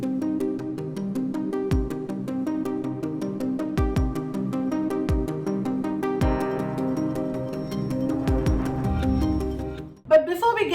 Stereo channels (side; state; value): both; identical; correlation 1.00